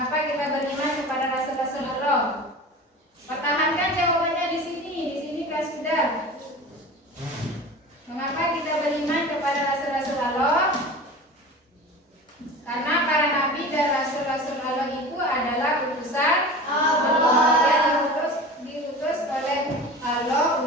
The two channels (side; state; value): both; normal; correlation 0.35